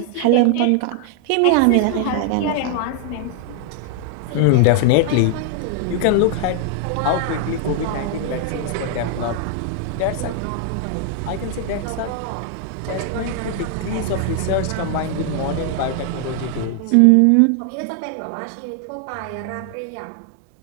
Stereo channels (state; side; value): different; both; correlation 0.00